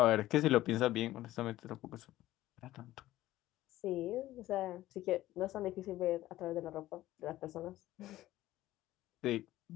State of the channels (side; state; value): right; quieter; 15.3 dB